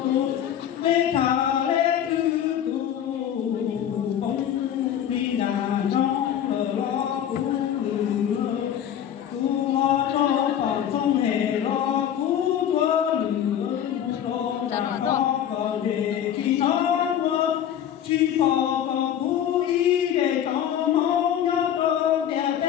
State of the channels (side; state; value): right; quieter; 10.0 dB